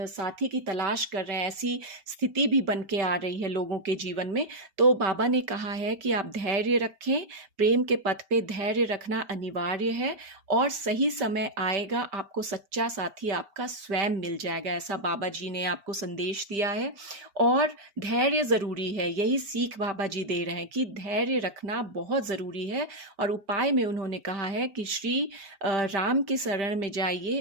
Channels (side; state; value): left; late; 5.1 ms